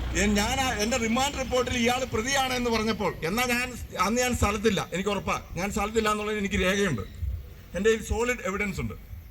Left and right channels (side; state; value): both; identical; correlation 1.00